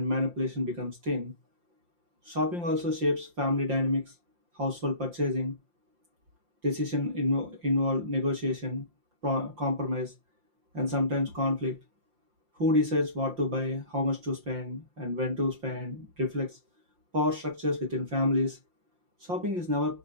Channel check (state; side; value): late; left; 5.7 ms